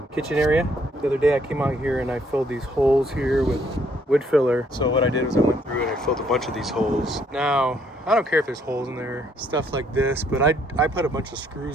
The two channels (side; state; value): both; normal; correlation 0.68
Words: kitchen area. The other day I came out here and I filled these holes here with wood filler. So what I did was I went through and I filled a bunch of these holes. Now, I don't care if there's holes in there, stuff like this, but I put a bunch of